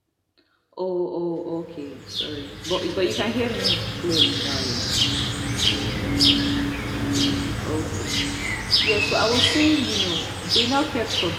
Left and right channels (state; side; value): identical; both; correlation 1.00